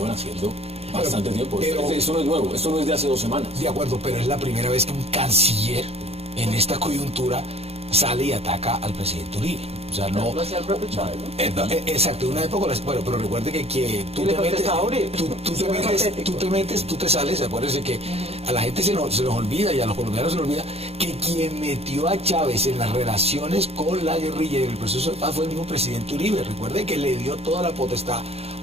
haciendo bastante tiempo. Pero, esto no es nuevo, esto no es de hace 2 semanas. De acuerdo, pero es la primera vez que un canciller en esta coyuntura sale y ataca al presidente Uribe. O sea, no... Lo hacía el propio Chávez, ¿no? Exacto, una época, bueno, pero recuerde que tú te metes, tú te sales, acuérdense que a la gente se nos olvida y a los colombianos se nos olvida que quien metió a Chávez en las relaciones con la guerrilla y el proceso de paz fue el mismo presidente Uribe. Recuerde que le dio toda la potestad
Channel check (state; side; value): late; left; 0.29 ms